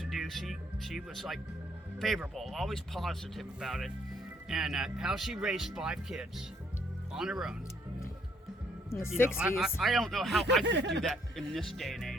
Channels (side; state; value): both; normal; correlation 0.68